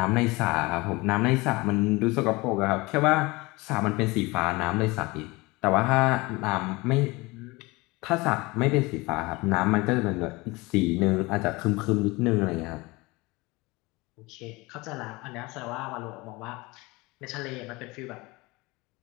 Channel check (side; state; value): right; quieter; 23.3 dB